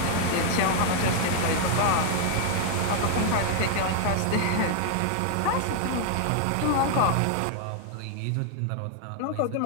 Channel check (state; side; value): different; both; correlation 0.00